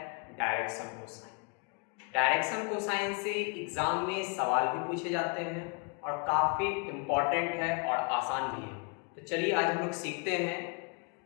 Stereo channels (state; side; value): quieter; right; 34.9 dB